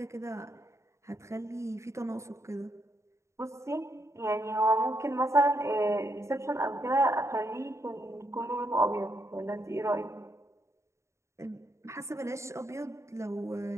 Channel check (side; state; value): left; late; 0.14 ms